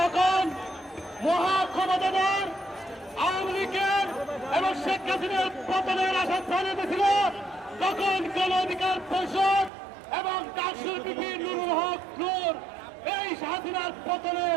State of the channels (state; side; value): drops out; left; at 9.7 s